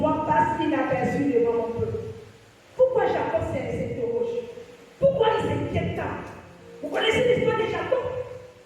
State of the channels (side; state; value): both; identical; correlation 1.00